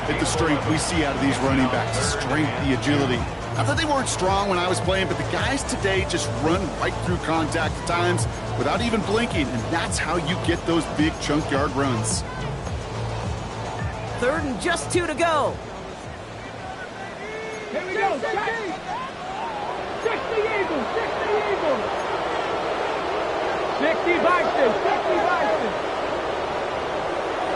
the strength we see out of these running backs. The strength, the agility. Not that they weren't strong when I was playing, but the guys today just run right through contact at times without even blinking, and that's how you get those big chunk yard runs. 3rd and just 2 to go. Here we go. 60 Eagles. 60 Eagles. 60 Bison. 60 Bison.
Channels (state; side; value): identical; both; correlation 1.00